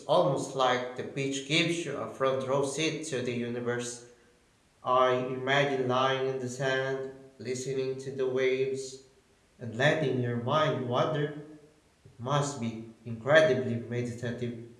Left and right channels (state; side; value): identical; both; correlation 1.00